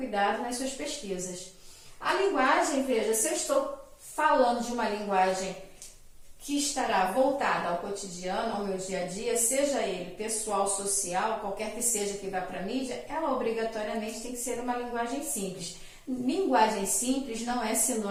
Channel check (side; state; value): both; identical; correlation 1.00